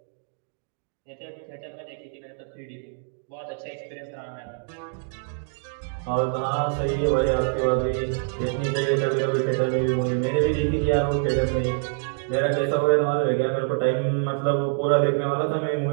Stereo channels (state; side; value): silent; left; digital silence